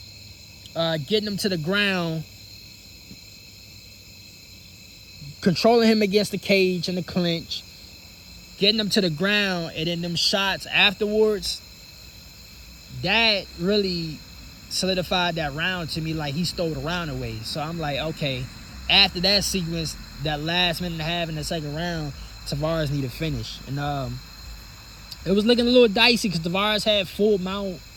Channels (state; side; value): identical; both; correlation 1.00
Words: getting him to the ground, controlling him against the cage and the clinch, getting him to the ground, and then them shots afterwards, that really solidified that round to me. Like, he stole the round away. So I'm like, okay, after that sequence, that last minute and a half in the second round, Tavares need to finish. And it was looking a little dicey because Tavares had full mount.